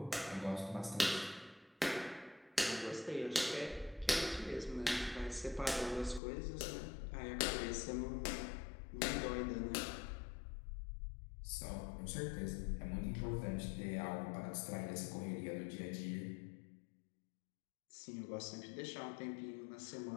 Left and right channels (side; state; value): right; drops out; at 6.2 s